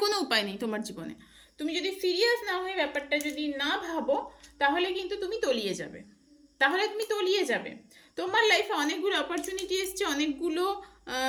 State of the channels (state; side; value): identical; both; correlation 1.00